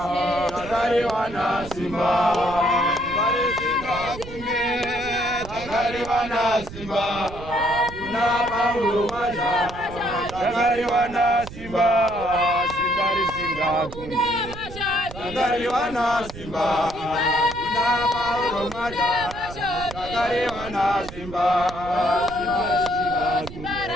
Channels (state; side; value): noise; right; rumble, 13 dB below the sound